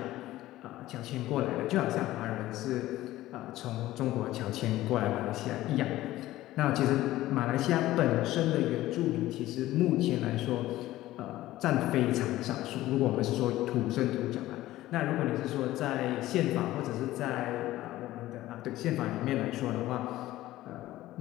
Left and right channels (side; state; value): right; quieter; 15.8 dB